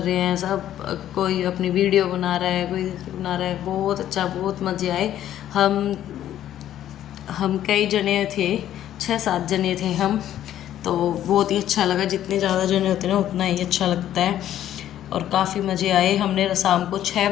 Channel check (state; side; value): quieter; right; 11.7 dB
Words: हैं सब, कोई अपनी वीडियो बना रहा है, कोई बना रहा है, बहुत अच्छा, बहुत मज़े आए। हम कई जने थे, 6-7 जने थे हम, तो बहुत ही अच्छा लगा। जितने ज़्यादा जने होते हैं ना उतना ही अच्छा लगता है, और काफ़ी मज़े आए। हमने शाम को 6